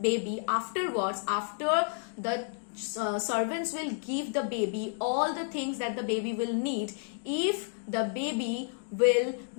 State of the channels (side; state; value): right; silent; 57 dB below the other